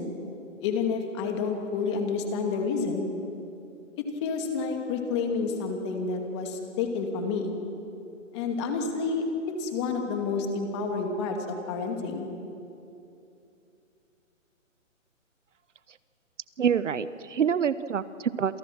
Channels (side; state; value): both; normal; correlation 0.17